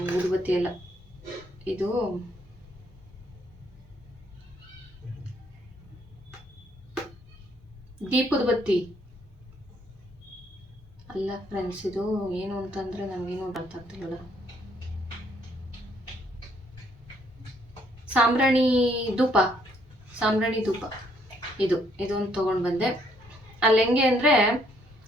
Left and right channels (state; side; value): normal; both; correlation 0.68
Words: ಊದುಬತ್ತಿ ಅಲ್ಲ, ಇದು ದೀಪದ ಬತ್ತಿ ಅಲ್ಲ ಫ್ರೆಂಡ್ಸ್. ಇದು ಏನು ಅಂತಂದರೆ ನನಗೇನು ಅರ್ಥ ಆಗ್ತಿಲ್ಲ. ಸಾಂಬ್ರಾಣಿ ಧೂಪ ಇದೊಂದು ತೊಗೊಂಡು ಬಂದೆ. ಅಲ್ಲಿ ಹೆಂಗೆ ಅಂದರೆ